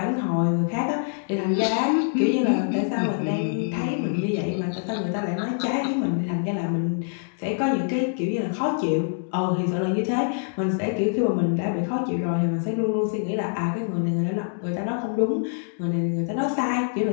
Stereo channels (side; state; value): right; silent; digital silence